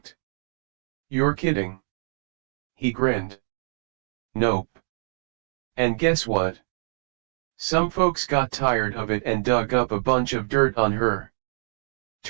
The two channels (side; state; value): left; silent; digital silence